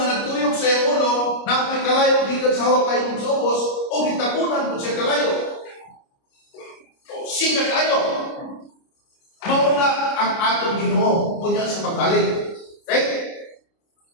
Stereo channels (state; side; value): late; right; 29 ms